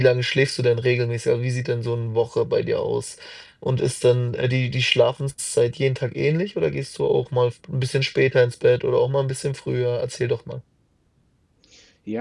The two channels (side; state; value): both; identical; correlation 1.00